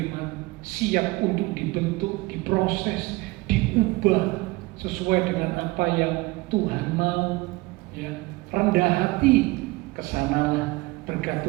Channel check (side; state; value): left; quieter; 22.4 dB